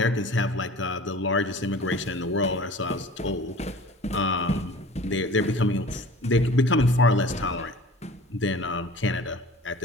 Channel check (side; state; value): both; normal; correlation 0.43